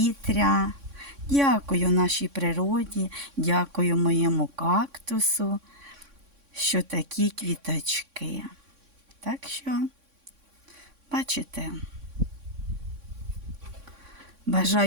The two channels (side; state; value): left; late; 3.6 ms